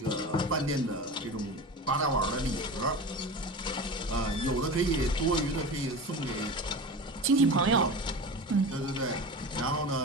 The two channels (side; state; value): both; normal; correlation 0.30